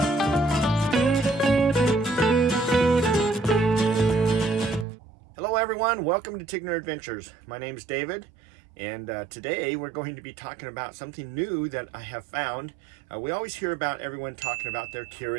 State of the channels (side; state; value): left; drops out; at 4.9 s